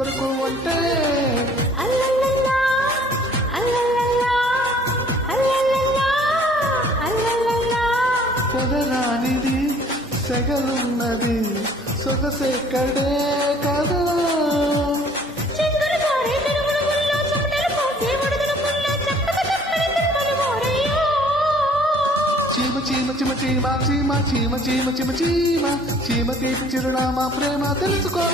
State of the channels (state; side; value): normal; both; correlation 0.55